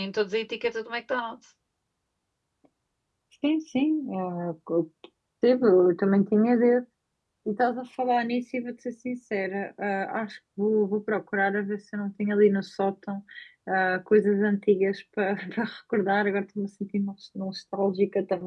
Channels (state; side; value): identical; both; correlation 1.00